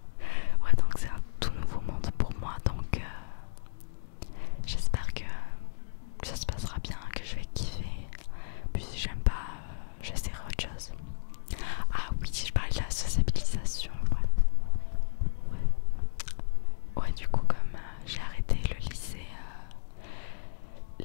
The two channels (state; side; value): silent; right; digital silence